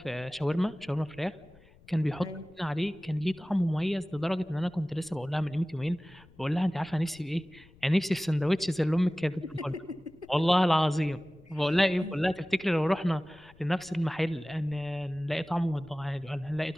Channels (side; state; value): left; noise; rumble, 26 dB below the sound